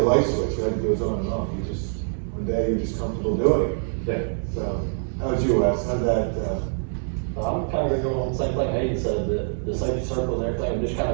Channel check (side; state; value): left; silent; 61 dB below the other